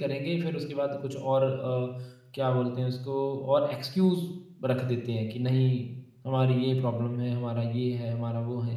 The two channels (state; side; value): identical; both; correlation 1.00